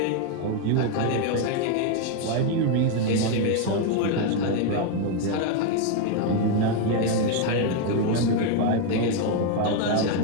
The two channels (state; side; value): different; both; correlation 0.01